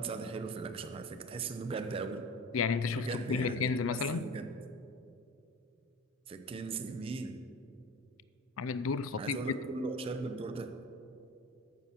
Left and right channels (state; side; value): normal; both; correlation 0.35